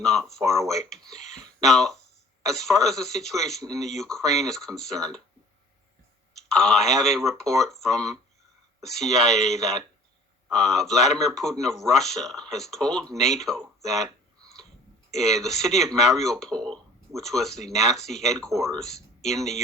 far away. Now, as far as the situation in the Ukraine is concerned, I have a report from the CIA that Vladimir Putin of Russia has told NATO that the city of Mariupol, which was the Nazi headquarters in the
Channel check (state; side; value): normal; both; correlation 0.49